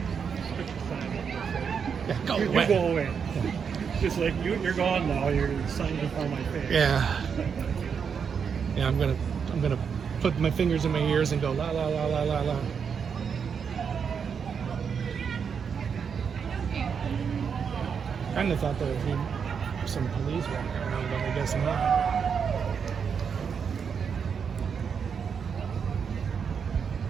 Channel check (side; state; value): left; quieter; 6.6 dB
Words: Yeah, go You away. go away. Just like you're gone now. You're signing before my face. Yeah. Yeah, I'm gonna put my fingers in my ears and go la la la la la la. Kind of thought there would be some police walking around, but I guess not.